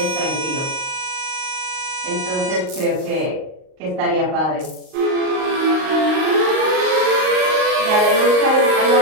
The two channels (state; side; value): late; left; 38 ms